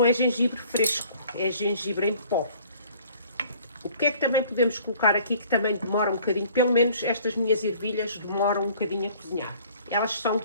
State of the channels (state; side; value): inverted; both; correlation -0.54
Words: é gengibre fresco, é gengibre em pó. O que é que também podemos colocar aqui que também demora um bocadinho, pelo menos estas minhas ervilhas demoram um bocadinho a cozinhar. Elas são um